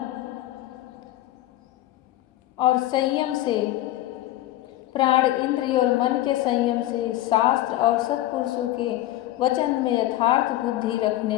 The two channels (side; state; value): right; quieter; 15.2 dB